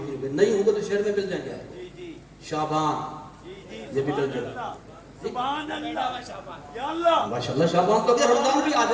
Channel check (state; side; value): identical; both; correlation 1.00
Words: گے، نہیں ہوں گے تو شہر میں مل جائیں گے۔ شعبان، یہ بھی مل جائے گا۔ سبحان اللہ، یا اللہ، ماشاءاللہ شعبان تو اگر رمضان بھی آ